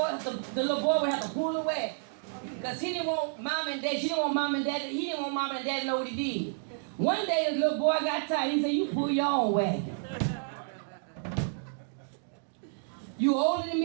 the little boy would have to pull the wagon. Because he didn't want mom and dad, she didn't want mom and dad, he didn't want mom and dad to know what he did. One day the little boy got tired. He said, you pull your own wagon. You older than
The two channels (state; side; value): silent; left; digital silence